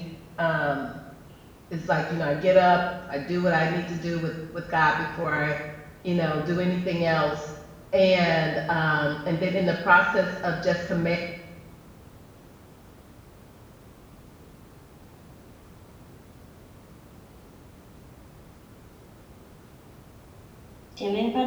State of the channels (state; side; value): identical; both; correlation 1.00